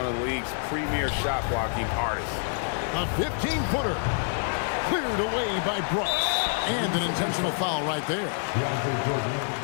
of the league's premier shot blocking artists. A 15-footer. Cleared away by Brooks. And an intentional foul right there.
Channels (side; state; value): right; silent; digital silence